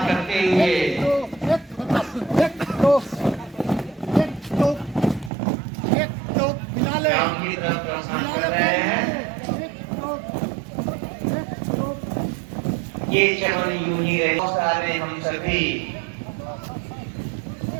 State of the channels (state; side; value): drops out; left; at 5.3 s